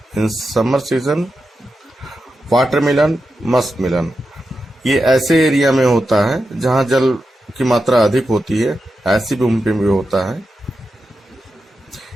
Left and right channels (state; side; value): normal; both; correlation 0.89